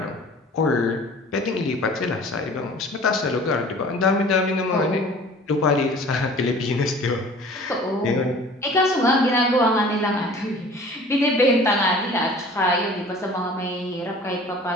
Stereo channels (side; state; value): both; normal; correlation 0.46